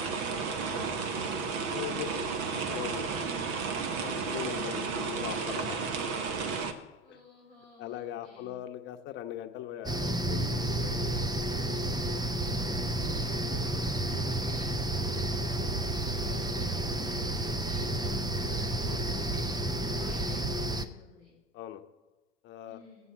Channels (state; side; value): normal; both; correlation 0.36